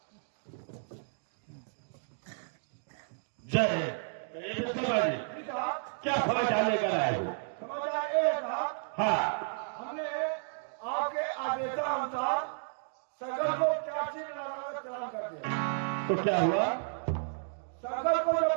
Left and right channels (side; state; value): left; silent; digital silence